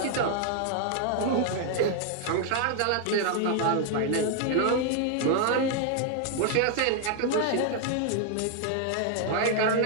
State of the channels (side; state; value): both; different; correlation 0.00